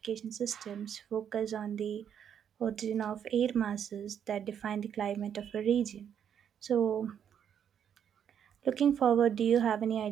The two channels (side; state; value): left; quieter; 8.6 dB